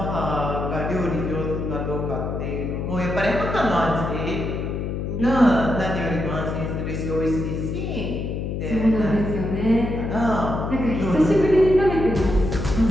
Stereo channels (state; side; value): noise; left; hum, 3 dB below the sound